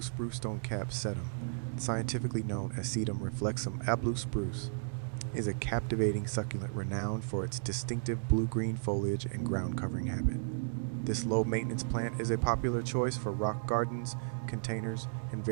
spruce stonecap sedum, scientifically known as Sedum reflexum a blue spruce, is a captivating succulent renowned for its distinctive blue-green foliage and ground-covering habit. This low-maintenance plant is a popular choice for rock gardens, containers, and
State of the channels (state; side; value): silent; left; digital silence